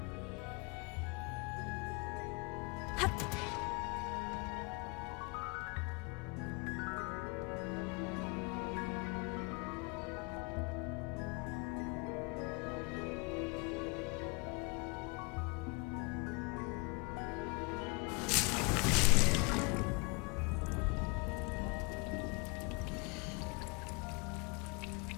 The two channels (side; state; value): right; quieter; 31.0 dB